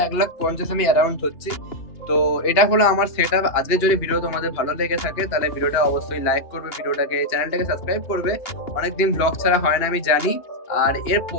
1,50,000 আমি অ্যারাউন্ড হচ্ছি। তো এটা হলো আমার সেট আপ। আজকে যদি ভিডিও তোমাদের ভালো লেগে থাকে তাহলে ভিডিওটা অবশ্যই লাইক করবে, ভিডিওটাকে, চ্যানেলটাকে সাবস্ক্রাইব করবে। অনেকদিন ব্লগ ছাড়া হয় না আমি জানি, আর এর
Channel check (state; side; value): late; right; 2.8 ms